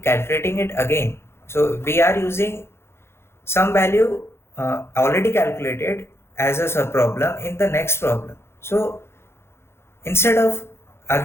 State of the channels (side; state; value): right; late; 0.12 ms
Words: it again? So we are using some value already calculated as a subproblem in the next problem. So instead of